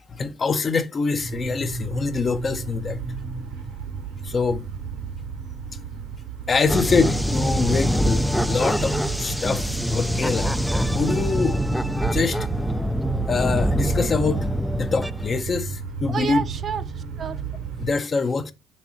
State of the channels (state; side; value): normal; both; correlation 0.83